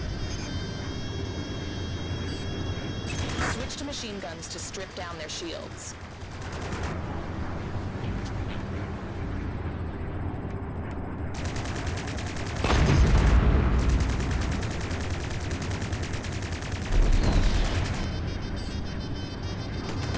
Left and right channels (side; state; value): both; identical; correlation 1.00